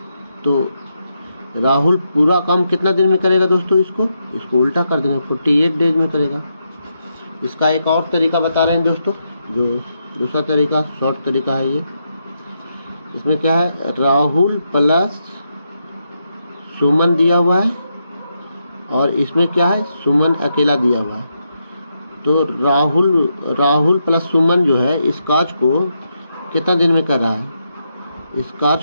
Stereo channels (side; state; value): both; inverted; correlation -0.82